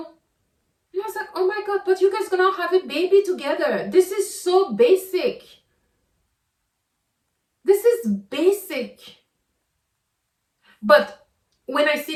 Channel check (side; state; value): both; identical; correlation 1.00